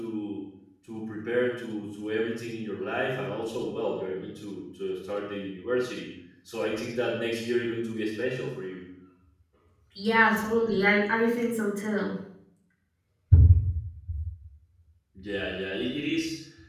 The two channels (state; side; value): identical; both; correlation 1.00